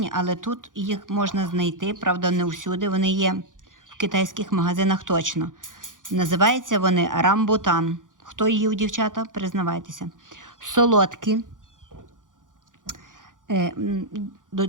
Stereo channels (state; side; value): late; left; 0.88 ms